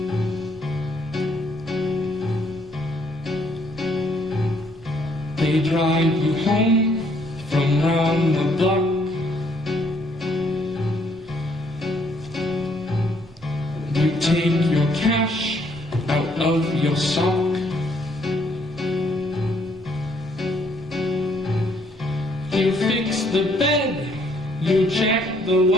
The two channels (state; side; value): normal; both; correlation 0.67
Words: They drive you home from round the block. You take your cash out of your sock. You fix the bed, you check the